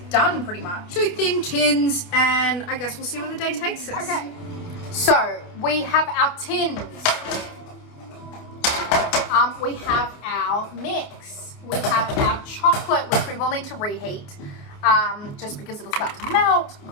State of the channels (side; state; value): right; late; 28 ms